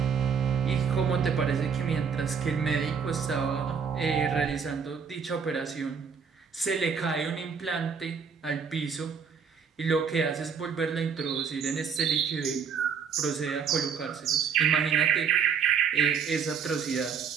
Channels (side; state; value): left; quieter; 6.5 dB